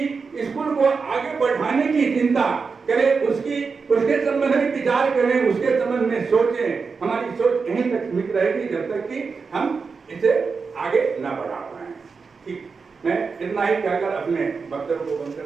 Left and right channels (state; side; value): quieter; left; 5.0 dB